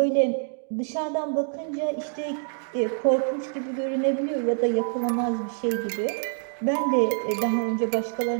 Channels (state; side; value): silent; left; 61 dB below the other